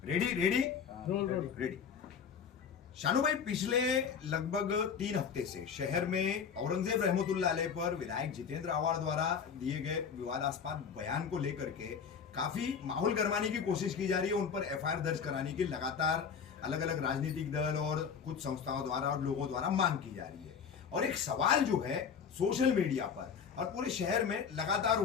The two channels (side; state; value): right; quieter; 6.8 dB